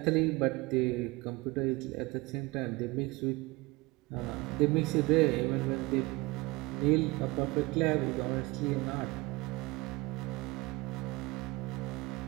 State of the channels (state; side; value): quieter; left; 22.9 dB